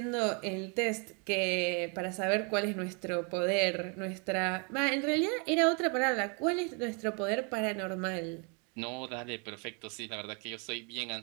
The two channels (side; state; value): left; quieter; 35.1 dB